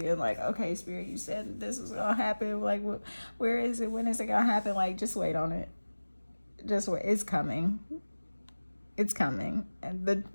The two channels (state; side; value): inverted; both; correlation -1.00